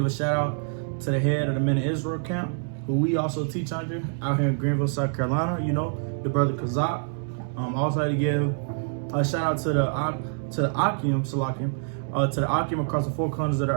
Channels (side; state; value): left; silent; 61 dB below the other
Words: a shout out to the head of the Men of Israel camp, who we also teach under out here in Greenville, South Carolina, you know, the brother Kazak. I also like to give a shout out to the Akim, to the Akim across the four corners of the